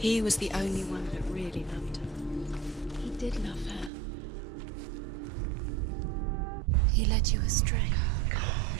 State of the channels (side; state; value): left; drops out; at 3.9 s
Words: was the only one that really loved her. He did love her. He led you astray. You